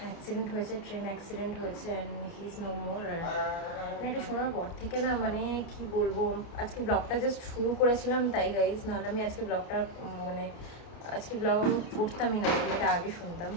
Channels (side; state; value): right; late; 30 ms